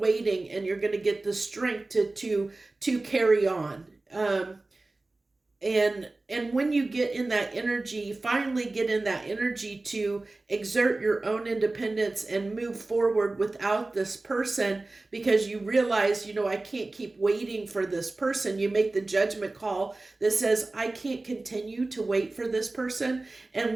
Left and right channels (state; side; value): quieter; left; 3.1 dB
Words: and you're going to get the strength to carry on. And when you get in that energy, finally get in that energy to exert your own independence and move forward without this person, because you realize, I can't keep waiting for this person. You make the judgment call that says, I can't continue to wait for this person.